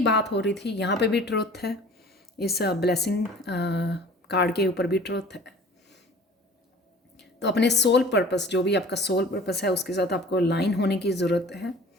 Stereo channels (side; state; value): both; normal; correlation 0.46